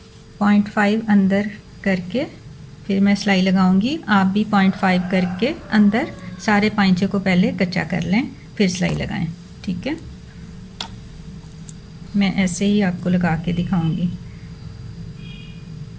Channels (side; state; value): both; identical; correlation 1.00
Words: 0.5 अंदर करके फिर मैं सिलाई लगाऊंगी। आप भी 0.5 करके अंदर सारे पांचे को पहले कच्चा कर लें, फिर सिलाई लगाएं। ठीक है, मैं ऐसे ही आपको लगा के दिखाऊंगी।